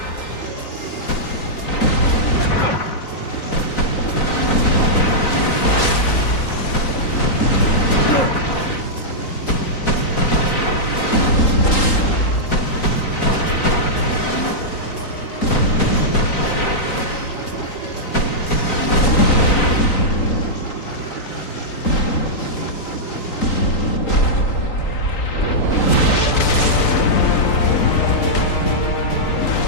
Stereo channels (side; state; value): right; late; 3.8 ms